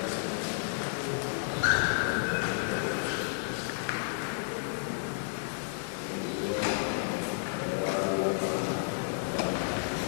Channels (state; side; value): silent; right; 57 dB below the other